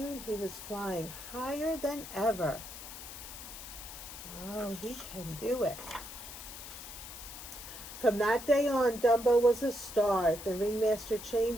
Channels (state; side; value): noise; left; hiss, 12 dB below the sound